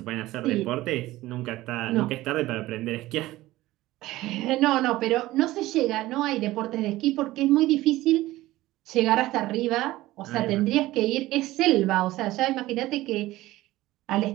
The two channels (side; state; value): left; quieter; 17.1 dB